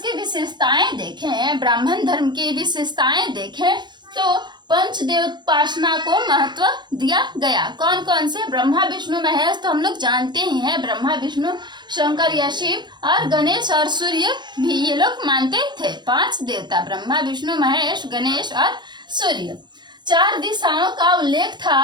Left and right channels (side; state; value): left; late; 0.22 ms